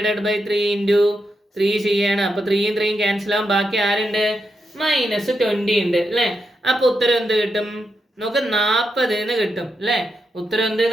ബൈ 3 ഇൻറ്റു 3 ചെയ്യാണ്. അപ്പൊ 3യും 3യും ക്യാൻസൽ ആവും, ബാക്കി ആരുണ്ട്, -20 ഉണ്ട് അല്ലേ. അപ്പൊ ഉത്തരം എന്ത് കിട്ടും നോക്ക്, 40 എന്ന് കിട്ടും അല്ലേ. ഉത്തരം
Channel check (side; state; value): both; normal; correlation 0.84